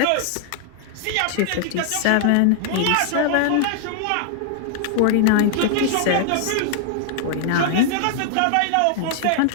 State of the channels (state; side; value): different; both; correlation 0.00